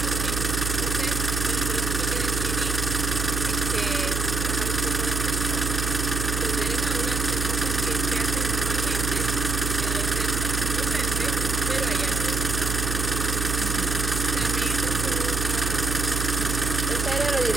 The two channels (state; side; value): noise; right; hum, 1 dB below the sound